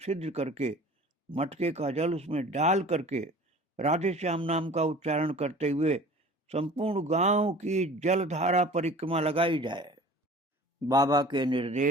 करके मटके का जल उसमें डाल करके राधे श्याम नाम का उच्चारण करते हुए संपूर्ण गांव की जलधारा परिक्रमा लगाई जाए। बाबा के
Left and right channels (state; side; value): normal; both; correlation 0.44